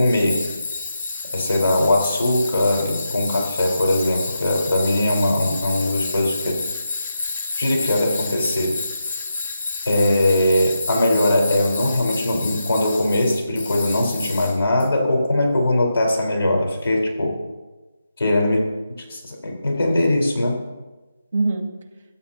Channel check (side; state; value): both; inverted; correlation -0.86